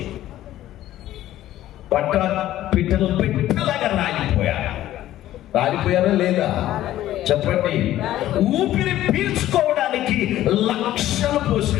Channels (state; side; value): quieter; right; 13.7 dB